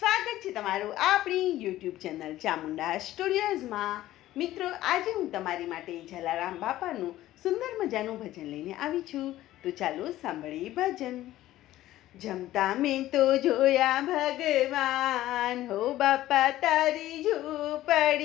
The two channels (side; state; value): right; quieter; 14.7 dB